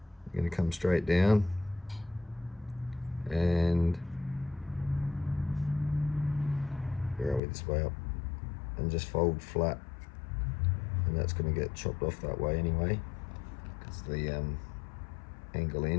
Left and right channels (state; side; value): drops out; right; at 7.4 s